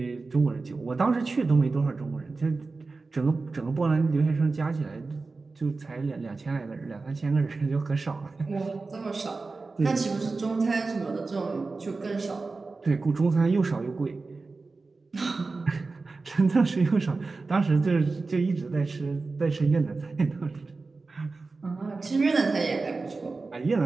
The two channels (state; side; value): quieter; left; 3.9 dB